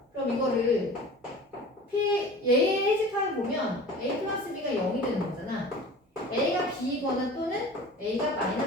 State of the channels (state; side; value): normal; both; correlation 0.40